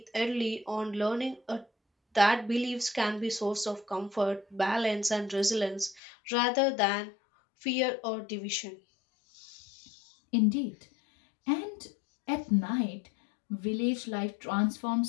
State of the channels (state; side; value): drops out; right; at 6.0 s